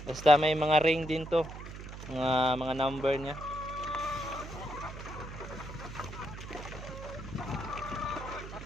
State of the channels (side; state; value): right; noise; hum, 11 dB below the sound